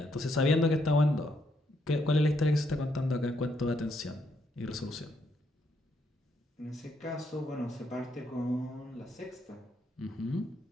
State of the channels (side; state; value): both; normal; correlation 0.75